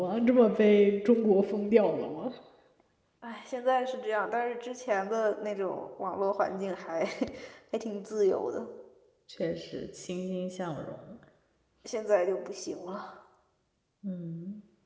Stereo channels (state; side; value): identical; both; correlation 1.00